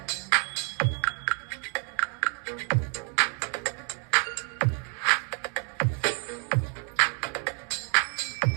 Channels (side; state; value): left; quieter; 39.9 dB